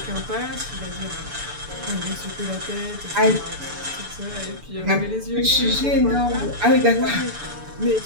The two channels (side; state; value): left; late; 6.9 ms